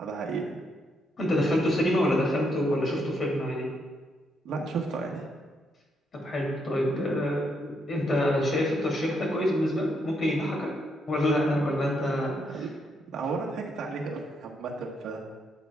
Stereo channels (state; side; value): normal; both; correlation 0.77